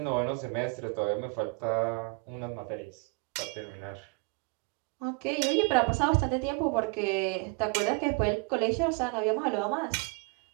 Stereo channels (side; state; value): left; quieter; 29.8 dB